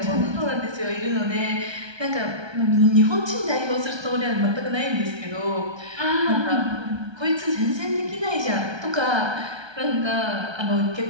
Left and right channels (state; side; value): late; left; 1.3 ms